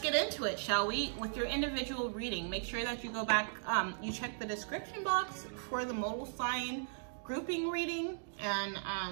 into it, shall we? With your individual reading, make sure that you go back, you check the description box for the modal sign grouping reading, and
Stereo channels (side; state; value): left; silent; digital silence